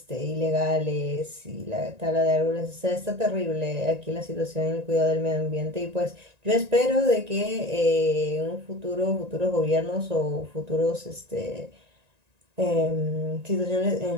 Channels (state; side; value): late; left; 1.9 ms